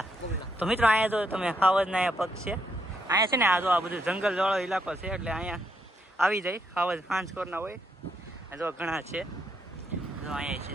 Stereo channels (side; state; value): both; normal; correlation 0.77